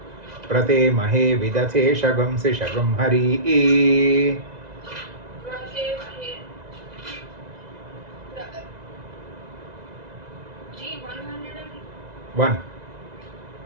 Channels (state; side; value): late; left; 2.0 ms